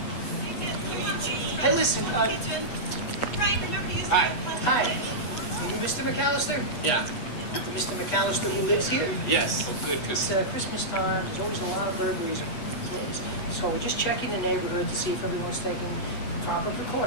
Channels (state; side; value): late; right; 8.1 ms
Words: Hey, listen, Hi. Hi. Are you Mr. McAllister? Yeah. Mr. McAllister who lives here? Yes. Oh, good, because It's Christmas time. There's always a lot of burglaries. So we're just checking the neighborhood to see if everyone's taking proper